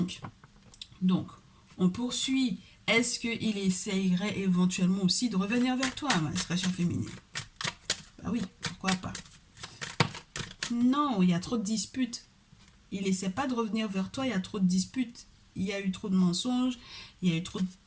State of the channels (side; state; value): both; identical; correlation 1.00